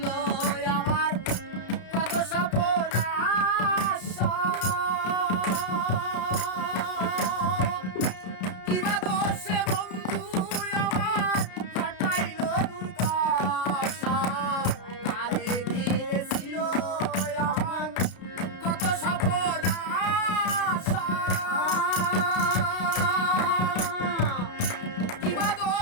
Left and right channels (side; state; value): right; late; 33 ms